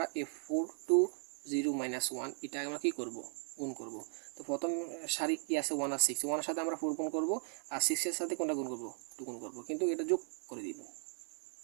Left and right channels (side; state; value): left; silent; 53 dB below the other